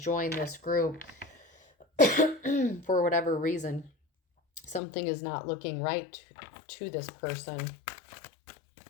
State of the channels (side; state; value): right; drops out; at 4.8 s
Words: this group for whatever reason. Something is not looking right to this person.